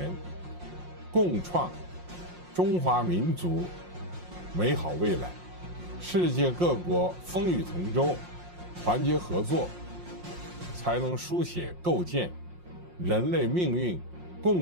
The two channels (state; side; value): late; left; 5.6 ms